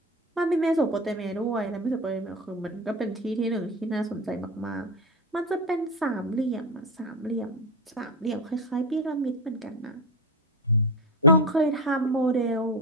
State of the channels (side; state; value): both; normal; correlation 0.19